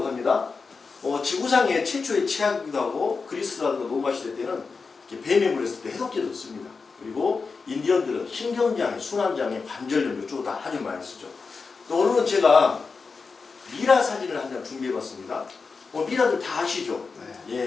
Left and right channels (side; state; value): right; quieter; 4.7 dB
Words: 합니다. 지구상의 최초의 치약이기도 하고 그리스라든가 로마 시대 때는 뱀에 물렸을 때 해독제도 씁니다. 그리고 인디언들은 신경장애, 순환장애, 관절염 이쪽으로 다 아주 많이 쓰죠. 또 오늘은 제가 미라 사진을 한 장 준비해봤습니다. 미라들 다 아시죠? 네.